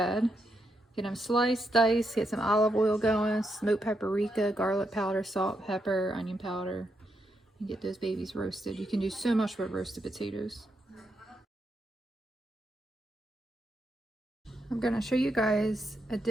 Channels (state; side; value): normal; both; correlation 0.82